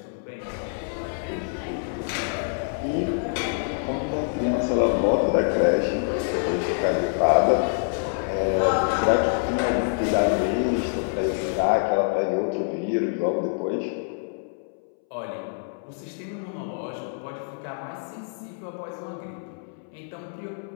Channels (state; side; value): silent; right; 61 dB below the other